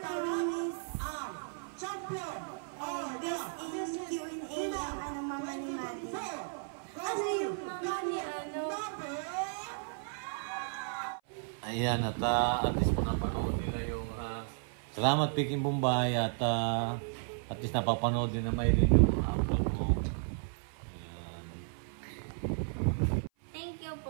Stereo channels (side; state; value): left; silent; 55 dB below the other